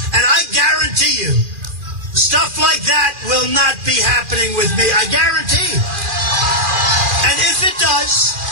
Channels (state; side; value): late; left; 2.4 ms